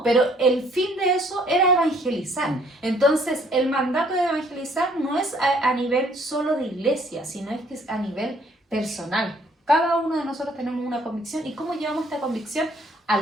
pero el fin de eso era evangelizar. Entonces, el mandato de evangelizar no es a nivel solo de iglesia, sino es que es a nivel personal. Cada uno de nosotros tenemos una convicción. ¿Y cómo llevamos esta convicción a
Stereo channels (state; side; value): normal; both; correlation 0.62